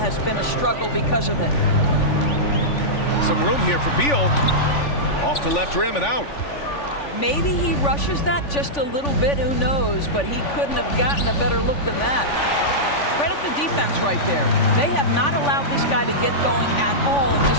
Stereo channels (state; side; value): late; right; 3.5 ms